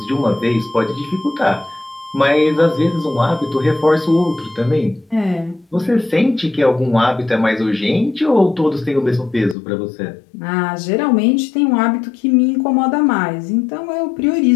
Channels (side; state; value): right; drops out; at 9.6 s